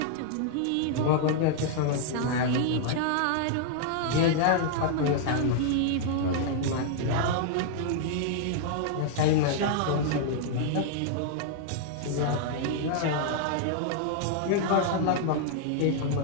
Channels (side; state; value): both; different; correlation -0.01